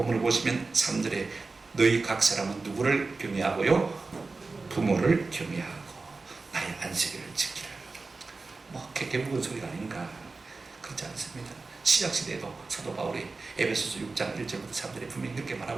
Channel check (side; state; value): left; quieter; 3.8 dB